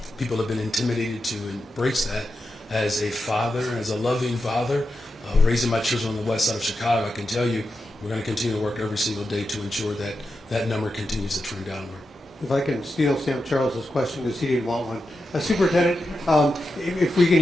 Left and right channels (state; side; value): normal; both; correlation 0.89